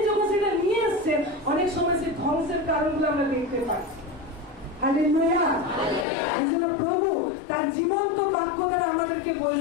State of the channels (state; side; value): drops out; right; at 6.1 s